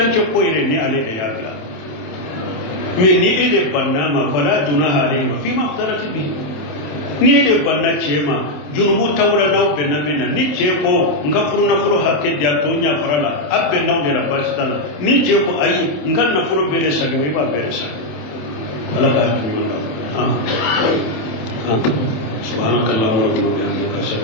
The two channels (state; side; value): late; right; 27 ms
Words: ko ire ni ale de yakla me ni ede banna ma fala junaha alayhi fi ma aftarati bi ni ede banna chema junubu tawla na be na bena ni che ko nga furu hake dia to nya farala abbe na de la basitala ni che ko ayi nga na furu bede saka me ba bede saka ala ka tuyo سبحانك اللهم ربنا وبحمدك اشهد